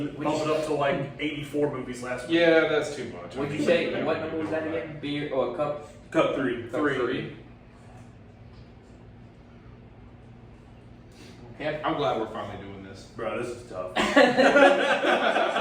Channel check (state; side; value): identical; both; correlation 1.00